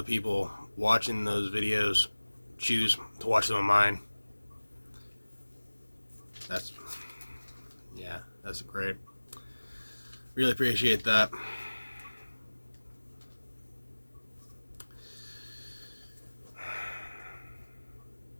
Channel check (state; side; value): inverted; both; correlation -1.00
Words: people watching those videos choose to watch them on mine. That's great. Really appreciate that.